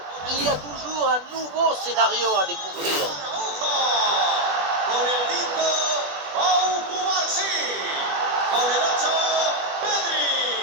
Il y a toujours un nouveau scénario à découvrir. Con el 5, Pau Cubarsí. Con el 8, Pedri.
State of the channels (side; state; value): left; late; 20 ms